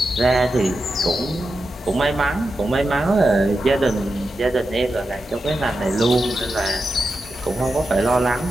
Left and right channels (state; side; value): normal; both; correlation 0.89